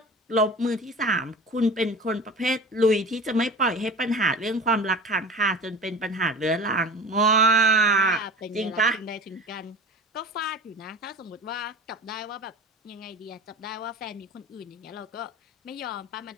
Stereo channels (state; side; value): normal; both; correlation 0.35